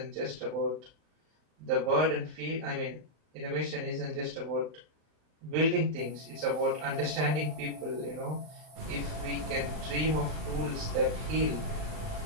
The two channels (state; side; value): late; left; 39 ms